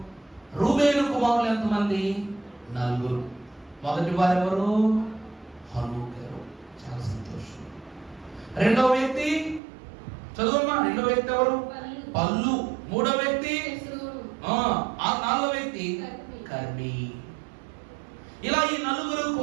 రూబేను కుమారులు ఎంతమంది? 4. మొదటి వారు ఎవరు? హనోకు గారు. చాలా సంతోషం. రెండవ వ్యక్తి చదువమ్మా. రెండవ వ్యక్తి ఎవరు? పల్లు. మూడవ వ్యక్తి ఆ 4వ వ్యక్తి కర్మీ. ఇలా ఈ 4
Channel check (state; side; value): drops out; left; at 9.6 s